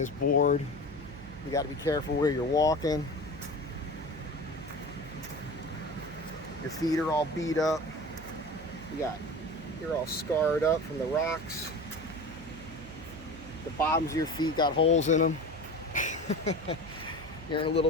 board, you got to be careful where you're walking, your feet are all beat up, you're all scarred up from the rocks, the bottoms of your feet got holes in them. You're in a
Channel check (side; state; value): right; noise; hum, 16 dB below the sound